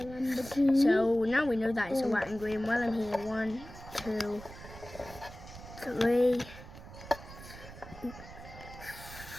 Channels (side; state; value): right; noise; rumble, 15 dB below the sound